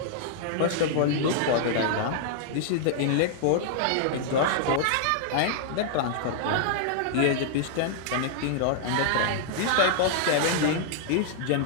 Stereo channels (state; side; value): different; both; correlation -0.01